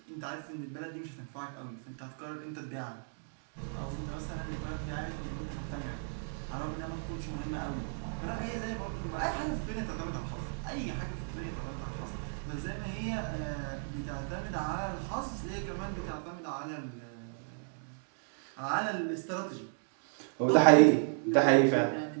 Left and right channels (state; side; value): silent; left; digital silence